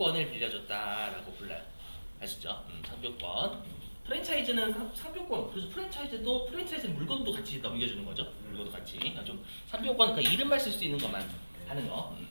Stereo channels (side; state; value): both; inverted; correlation -1.00